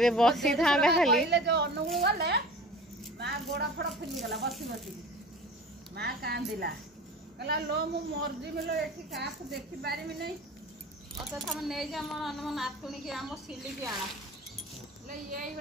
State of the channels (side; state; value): both; normal; correlation 0.39